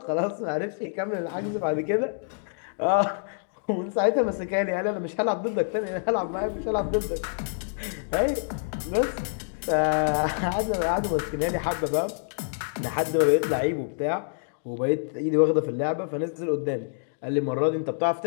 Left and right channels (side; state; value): right; silent; digital silence